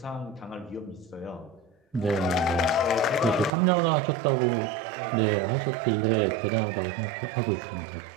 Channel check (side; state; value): left; drops out; at 3.5 s